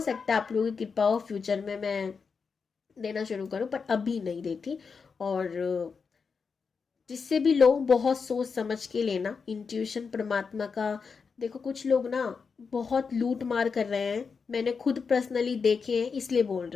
है आप लोगों की कृपा हो फ्यूचर में मैं देना शुरू करूँ, पर अभी नहीं देती। और जिससे भी लो बहुत सोच समझ के लेना, इंट्यूशन परमात्मा का। देखो कुछ लोग ना बहुत लूट मार कर रहे हैं, मैंने खुद पर्सनली देखे हैं, इसलिए बोल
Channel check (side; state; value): right; quieter; 5.4 dB